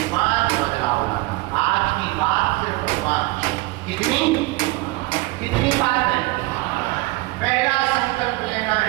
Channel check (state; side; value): quieter; left; 22.0 dB